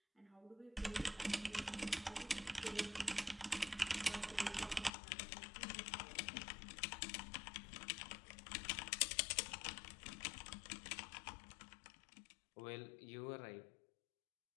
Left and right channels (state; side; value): drops out; right; at 4.9 s